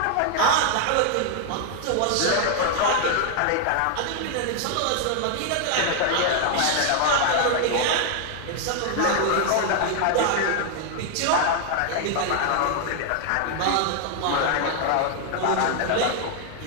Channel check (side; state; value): both; different; correlation 0.00